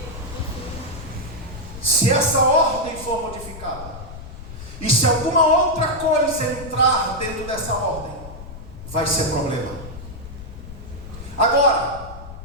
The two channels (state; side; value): noise; left; rumble, 13 dB below the sound